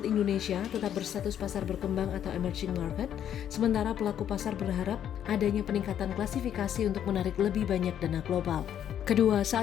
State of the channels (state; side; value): quieter; right; 9.9 dB